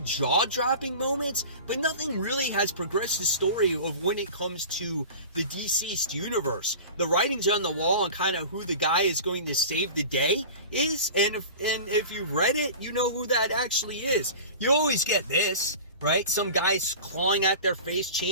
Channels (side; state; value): both; inverted; correlation -0.36